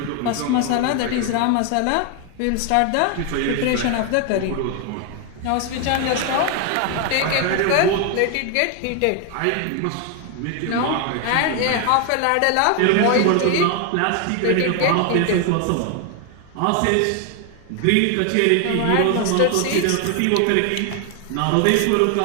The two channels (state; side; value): different; both; correlation 0.01